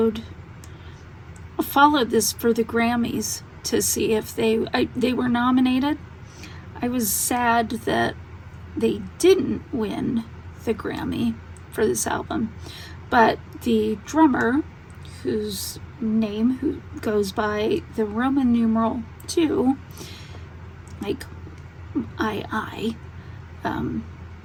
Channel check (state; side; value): identical; both; correlation 1.00